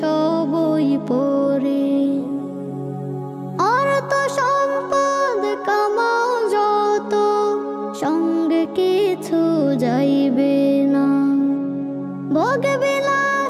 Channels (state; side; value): identical; both; correlation 1.00